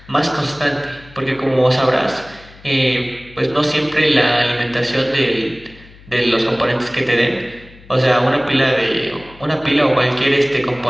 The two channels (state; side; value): noise; left; hum, 23 dB below the sound